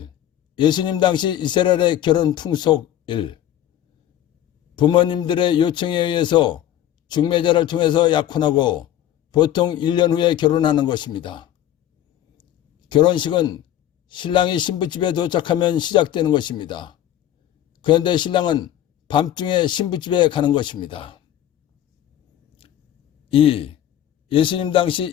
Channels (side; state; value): right; quieter; 11.7 dB